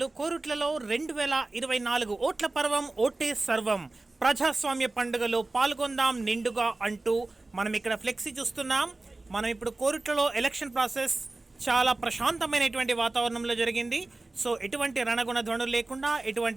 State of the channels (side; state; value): left; quieter; 3.1 dB